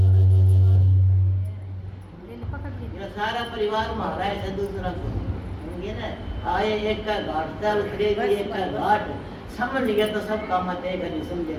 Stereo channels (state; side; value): identical; both; correlation 1.00